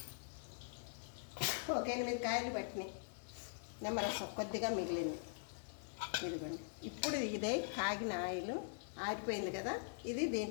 ఒక 8 కాయలు పట్టినాయి. నిమ్మరసం కొద్దిగా మిగిలింది. ఇదిగోండి. ఇప్పుడు ఇదే కాగిన ఆయిల్ ఆరిపోయింది కదా, ఇది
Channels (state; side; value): silent; right; digital silence